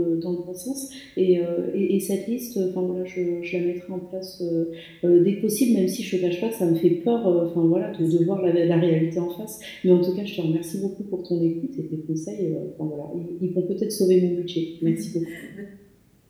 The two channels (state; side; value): identical; both; correlation 1.00